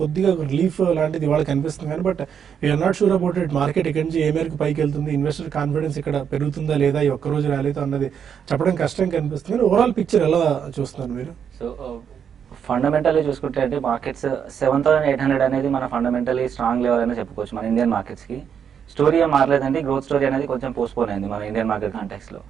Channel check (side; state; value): left; quieter; 7.8 dB